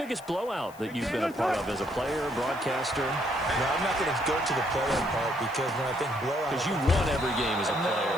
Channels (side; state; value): left; noise; hiss, 23 dB below the sound